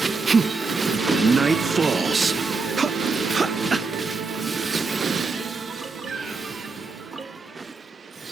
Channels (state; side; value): quieter; left; 4.1 dB